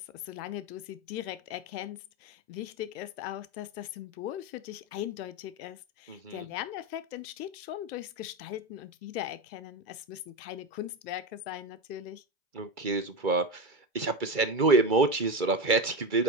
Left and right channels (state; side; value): late; left; 2.3 ms